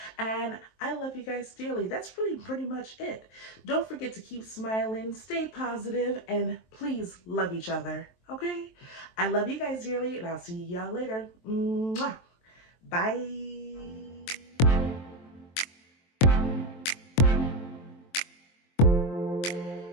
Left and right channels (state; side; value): late; right; 23 ms